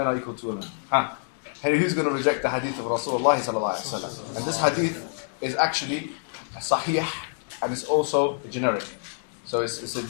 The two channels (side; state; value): right; silent; digital silence